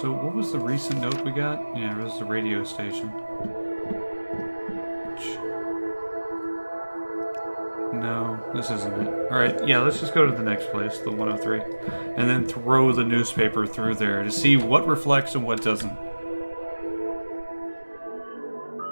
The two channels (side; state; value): both; inverted; correlation -1.00